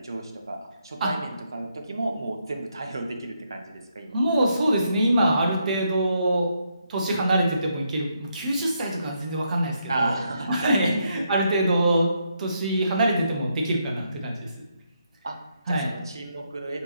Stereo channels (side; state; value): both; inverted; correlation -0.78